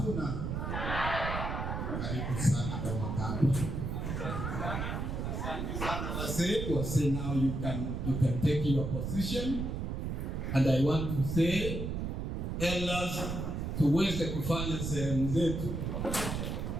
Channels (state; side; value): noise; right; rumble, 3 dB below the sound